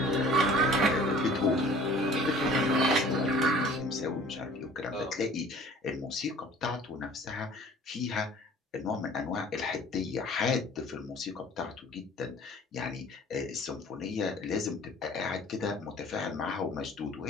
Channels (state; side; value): normal; both; correlation 0.49